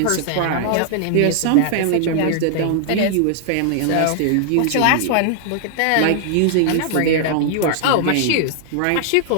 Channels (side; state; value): both; different; correlation -0.01